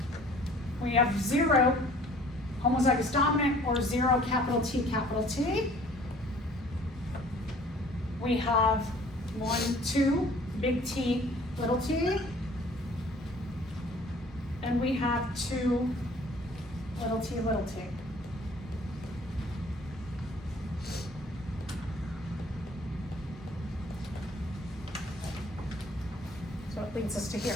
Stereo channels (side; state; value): both; normal; correlation 0.53